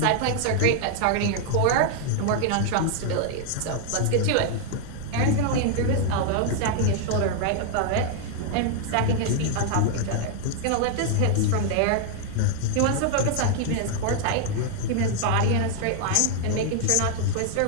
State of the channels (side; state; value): both; different; correlation 0.00